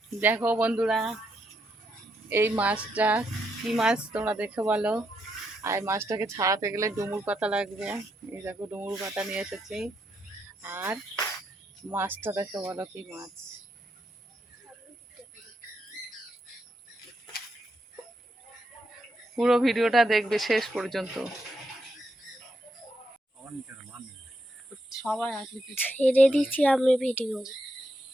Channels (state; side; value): normal; both; correlation 0.80